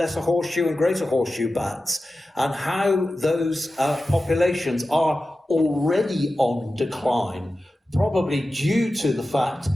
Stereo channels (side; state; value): both; normal; correlation 0.94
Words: horseshoe and greater horseshoe bats, and how those populations are already on decline, probably due to the fact